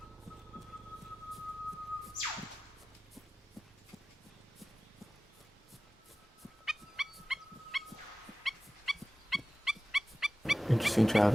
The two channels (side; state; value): both; normal; correlation 0.96